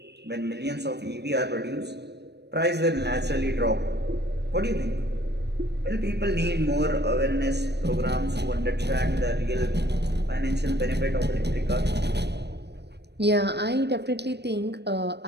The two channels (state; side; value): late; left; 0.49 ms